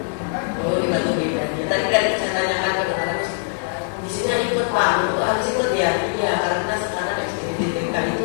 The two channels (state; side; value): silent; right; digital silence